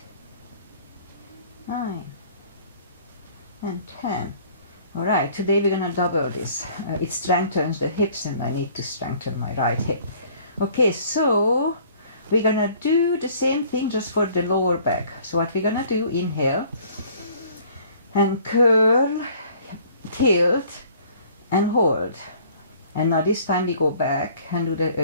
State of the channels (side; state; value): both; inverted; correlation -0.55